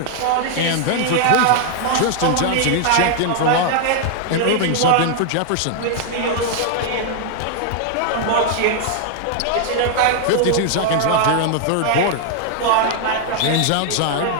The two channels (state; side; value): different; both; correlation 0.00